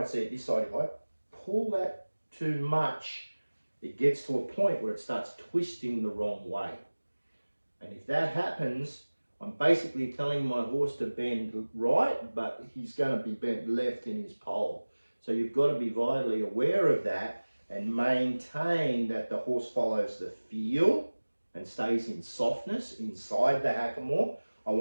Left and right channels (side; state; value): both; inverted; correlation -1.00